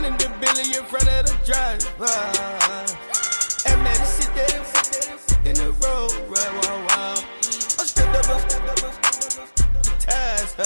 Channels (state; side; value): inverted; both; correlation -1.00